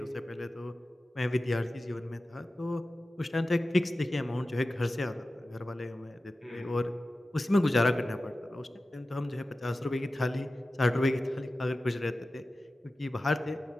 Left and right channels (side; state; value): both; normal; correlation 0.95